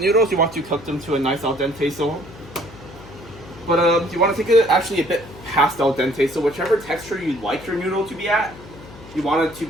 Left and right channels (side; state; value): left; noise; hum, 18 dB below the sound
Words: you want to cook them to a nice al dente. But you want to take it actually a bit past al dente. So whichever texture you like your noodle to be at, you want